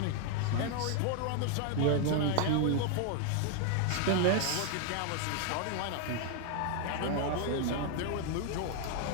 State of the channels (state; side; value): different; both; correlation 0.01